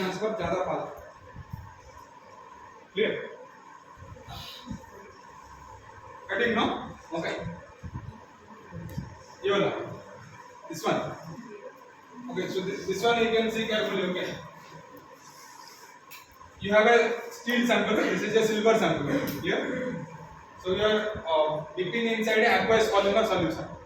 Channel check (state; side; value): identical; both; correlation 1.00